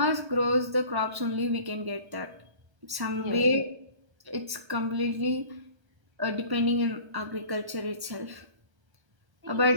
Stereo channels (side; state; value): left; late; 1.1 ms